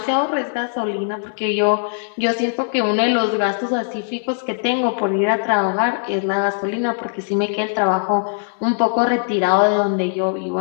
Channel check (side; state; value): right; silent; 66 dB below the other